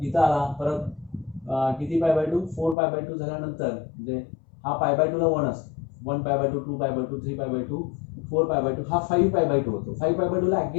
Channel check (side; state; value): right; drops out; at 2.8 s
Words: इथं आला, परत किती π/2, 4π/2 झाल्यानंतर म्हणजे हा π/2 ला 1 असतो, 1π/2, 2π/2, 3π/2, 4π/2, हा 5π/2 होतो. 5π/2 ला